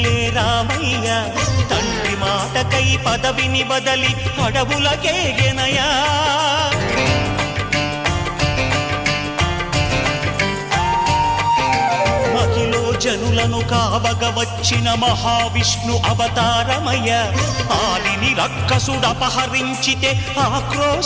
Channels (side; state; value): both; identical; correlation 1.00